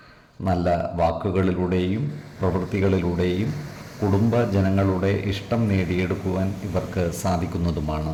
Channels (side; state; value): both; identical; correlation 1.00